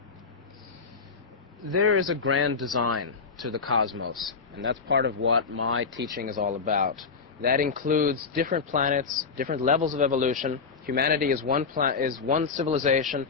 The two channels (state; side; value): quieter; right; 5.1 dB